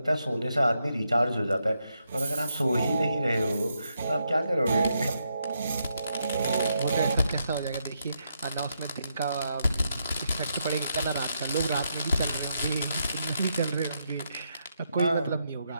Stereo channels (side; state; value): both; inverted; correlation -0.81